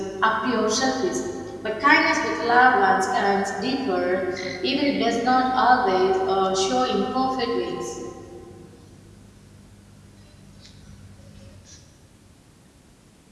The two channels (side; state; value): both; identical; correlation 1.00